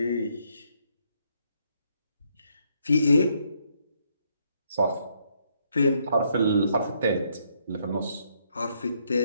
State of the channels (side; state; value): both; inverted; correlation -0.72